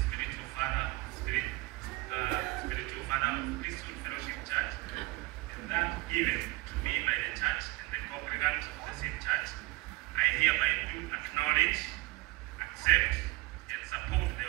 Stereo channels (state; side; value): quieter; left; 21.2 dB